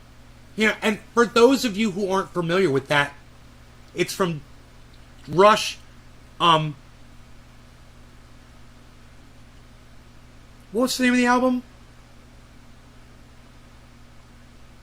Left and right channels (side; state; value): both; identical; correlation 1.00